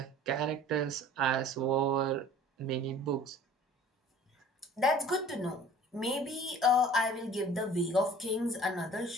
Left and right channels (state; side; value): normal; both; correlation 0.47